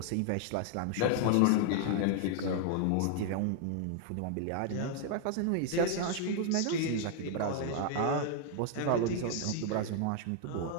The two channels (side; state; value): both; different; correlation 0.00